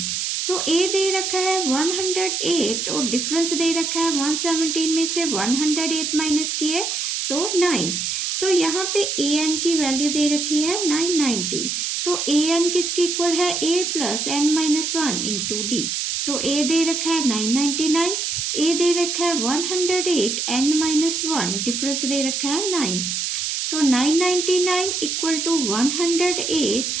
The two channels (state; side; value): noise; right; hiss, 1 dB below the sound